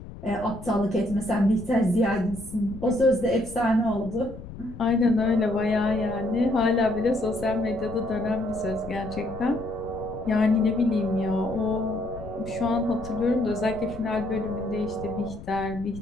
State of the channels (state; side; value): noise; left; rumble, 14 dB below the sound